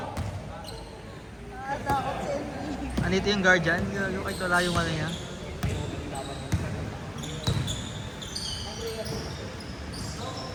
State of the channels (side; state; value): both; identical; correlation 1.00